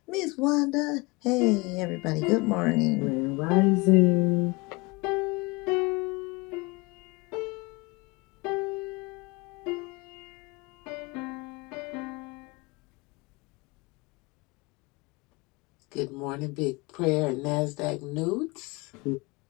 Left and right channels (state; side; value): quieter; right; 25.7 dB